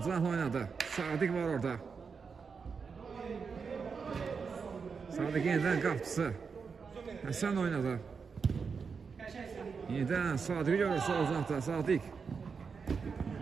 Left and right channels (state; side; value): quieter; left; 5.5 dB